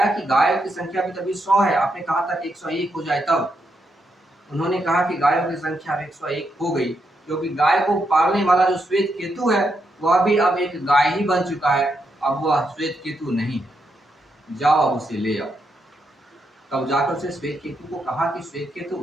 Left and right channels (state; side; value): normal; both; correlation 0.81